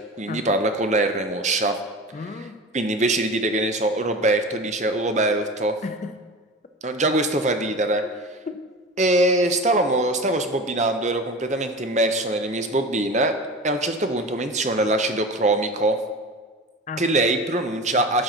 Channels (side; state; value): both; normal; correlation 0.32